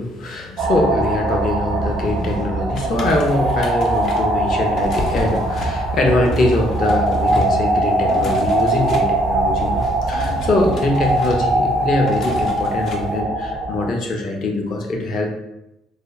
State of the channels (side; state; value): both; normal; correlation 0.66